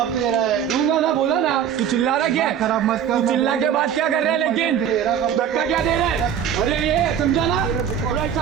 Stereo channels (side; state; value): left; quieter; 8.8 dB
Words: दे रहा है? दूंगा ना, बोला ना। तू चिल्ला रहा क्या? खराब मत कर। तू चिल्ला के बाद क्या कर रहा है? लेकिन धक्का क्या दे रहा है? अरे ये समझा ना, और